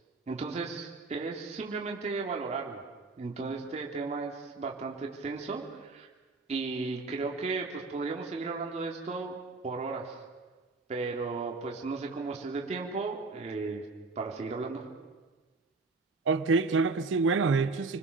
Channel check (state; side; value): quieter; left; 3.8 dB